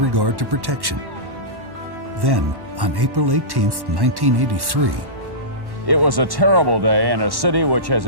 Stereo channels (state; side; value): late; left; 1.1 ms